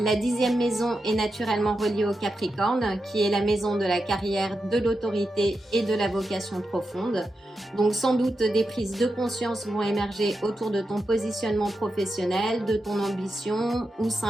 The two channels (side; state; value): both; normal; correlation 0.88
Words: 10e maison est naturellement reliée au Capricorne, qui est la maison de la carrière, de l'autorité et de la vocation profonde. Donc sans doute des prises de conscience vont émerger autour de ton positionnement professionnel, de ton ambition ou